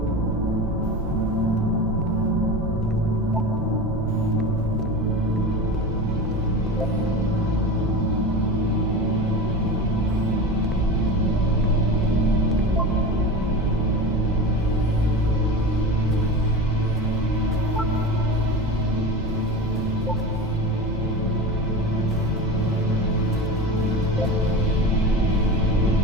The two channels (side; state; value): both; normal; correlation 0.28